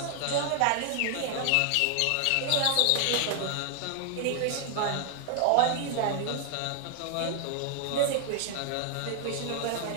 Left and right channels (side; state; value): both; different; correlation 0.00